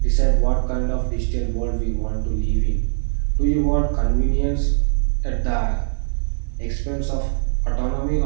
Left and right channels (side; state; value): left; silent; 65 dB below the other